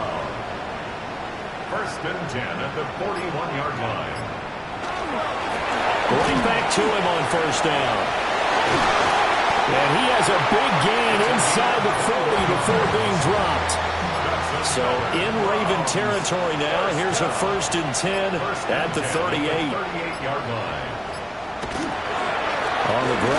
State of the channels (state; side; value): identical; both; correlation 1.00